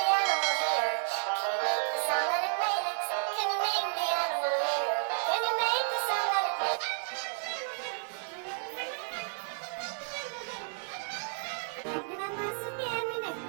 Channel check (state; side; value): silent; left; digital silence